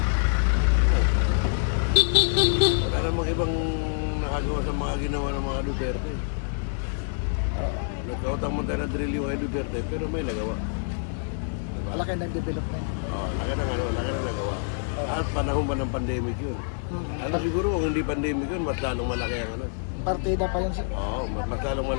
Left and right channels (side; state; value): right; silent; digital silence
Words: Wala namang ibang nakagawa sa mga ginawa ng mga Duterte. Nagkautang mo tayo na drill yung kay Duterte, pero may nagawa. malaki ng development. Laki na nagawa. At panahon ba ng pandemic yun? Ano siguro kung hindi pandemic yun, mas lalong malaki ang ano. Partida pa yun sir. Oo, mas lalong